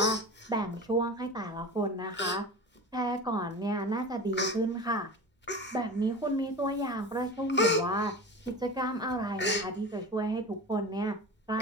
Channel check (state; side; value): normal; both; correlation 0.32